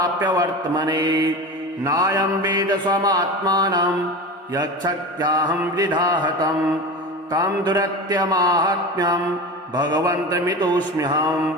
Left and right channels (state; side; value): normal; both; correlation 0.28